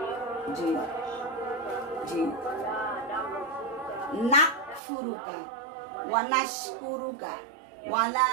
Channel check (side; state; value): left; drops out; at 4.8 s